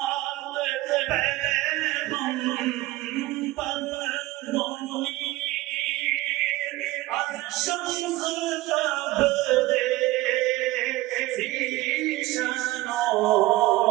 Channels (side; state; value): left; quieter; 18.5 dB